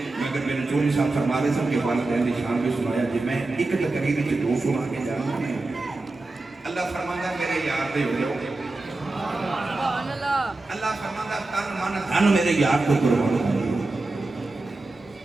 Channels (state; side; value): quieter; left; 3.1 dB